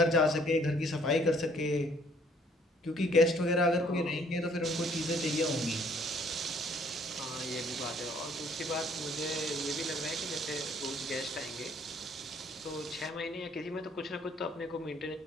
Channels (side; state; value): both; normal; correlation 0.62